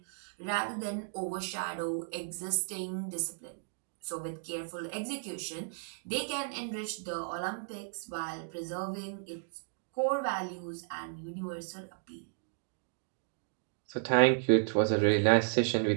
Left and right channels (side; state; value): left; silent; digital silence